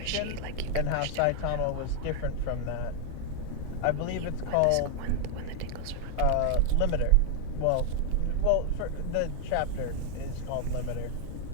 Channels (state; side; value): different; both; correlation 0.00